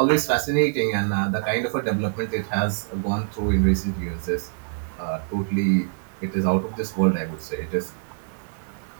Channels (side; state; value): left; silent; 60 dB below the other